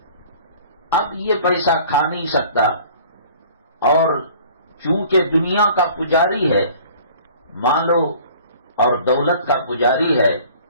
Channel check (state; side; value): inverted; both; correlation -0.49